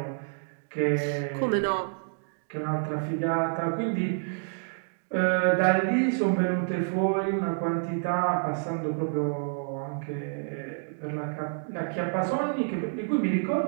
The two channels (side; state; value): left; silent; digital silence